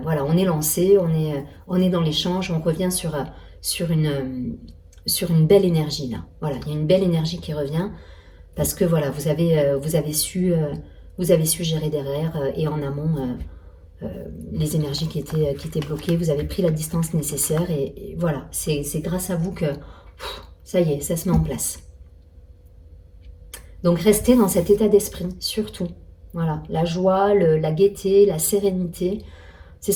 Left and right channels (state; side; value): identical; both; correlation 1.00